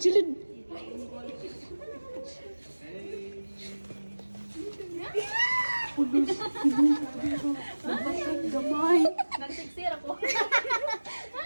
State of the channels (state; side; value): inverted; both; correlation -1.00